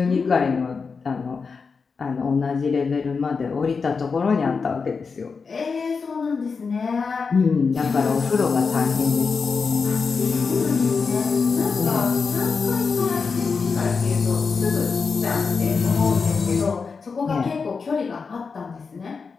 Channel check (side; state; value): right; quieter; 5.1 dB